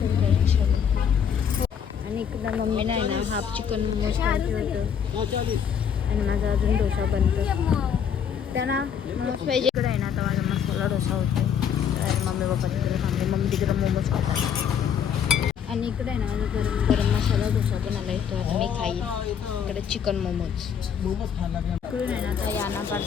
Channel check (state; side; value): quieter; right; 7.8 dB